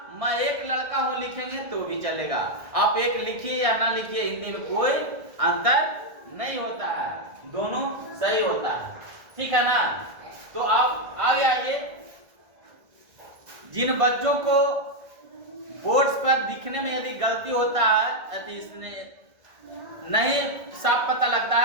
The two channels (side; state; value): left; late; 1.6 ms